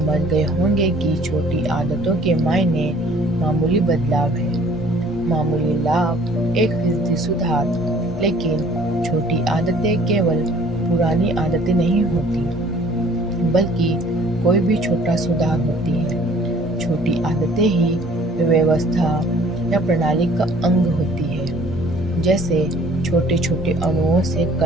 गए होंगे कि छोटी आदतों के मायने मामूली बदलाव है, मामूली लाभ, 1% सुधार। लेकिन छोटी आदतें केवल पुरानी आदतें नहीं होती, बल्कि कोई भी छोटा सुधार होती है। छोटी आदतें ही व्यवस्था या प्रणाली का अंग होती है। जैसे छोटे छोटे अणुओं से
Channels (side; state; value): both; normal; correlation 0.54